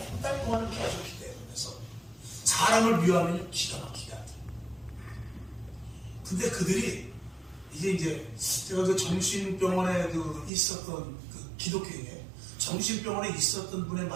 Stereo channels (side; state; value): left; drops out; at 10.5 s